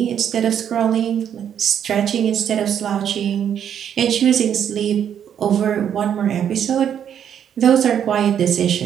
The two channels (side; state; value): left; quieter; 9.0 dB